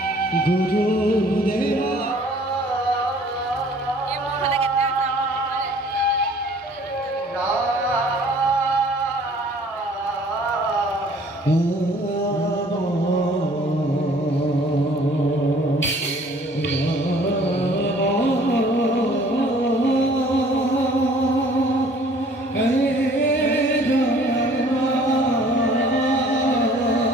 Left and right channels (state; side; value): normal; both; correlation 0.54